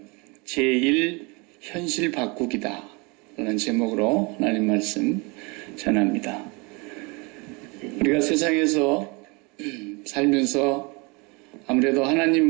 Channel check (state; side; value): quieter; left; 28.8 dB